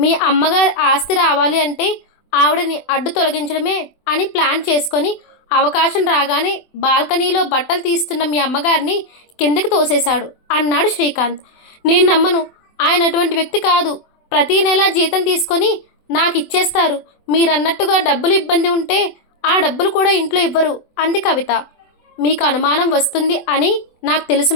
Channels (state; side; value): late; right; 24 ms